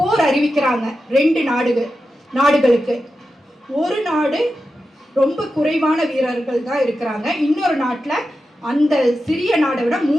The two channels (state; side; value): normal; both; correlation 0.91